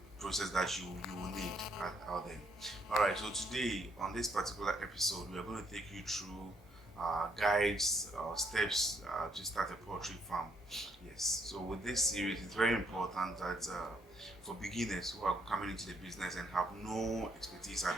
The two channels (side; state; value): both; normal; correlation 0.71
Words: process that you will need out there. All right, so today on this particular episode we are going to take you through guides or steps to start a poultry farm. Yes, so with this series it's very important that for beginners who are coming into the business and have no expertise